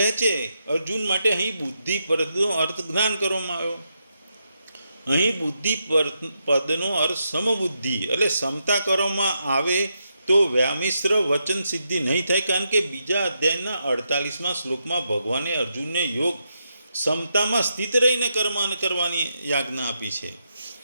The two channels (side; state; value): both; inverted; correlation -0.83